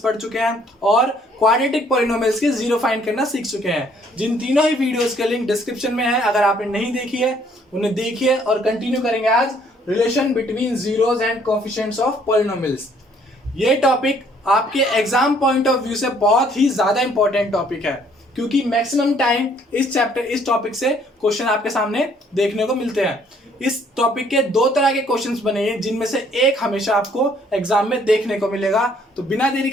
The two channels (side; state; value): both; normal; correlation 0.63